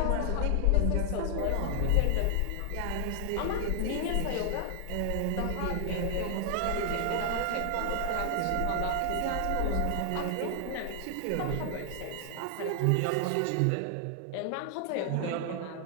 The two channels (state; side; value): different; both; correlation 0.00